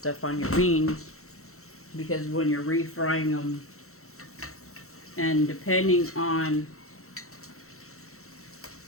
on your beans, because when you're refrying them, and depending on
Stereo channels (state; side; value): late; right; 0.63 ms